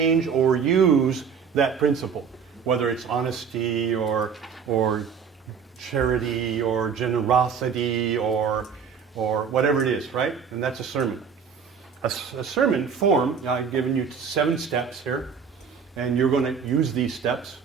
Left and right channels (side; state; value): left; quieter; 6.5 dB